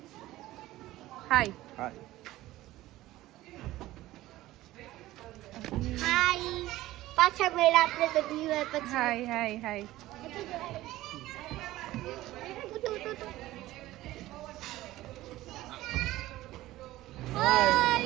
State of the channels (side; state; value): left; quieter; 16.3 dB